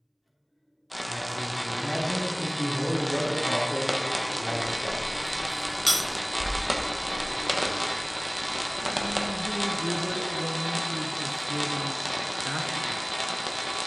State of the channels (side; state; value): both; identical; correlation 1.00